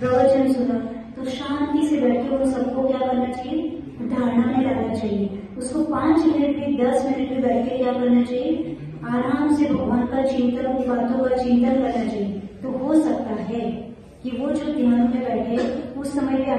सुना, तो शांति से बैठ के उन सबको क्या करना चाहिए, धारणा में लाना चाहिए। उसको 5 मिनट भी 10 मिनट भी बैठ के क्या करना चाहिए, आराम से भगवान का चिंतन, उन बातों का चिंतन करना चाहिए। तो हो सकता है कि वो जो ध्यान में बैठे उस समय पे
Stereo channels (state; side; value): identical; both; correlation 1.00